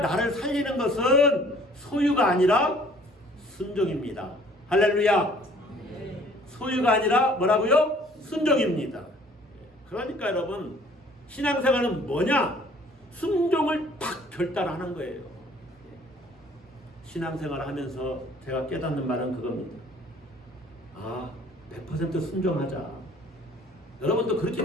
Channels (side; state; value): both; normal; correlation 0.55